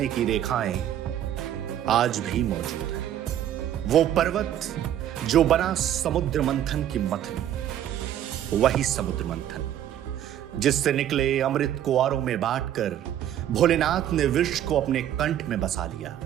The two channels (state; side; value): quieter; left; 11.1 dB